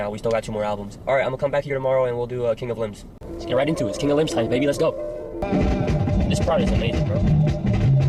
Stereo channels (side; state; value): both; identical; correlation 1.00